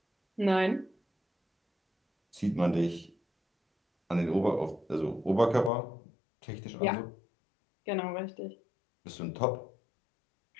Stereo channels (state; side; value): drops out; right; at 5.7 s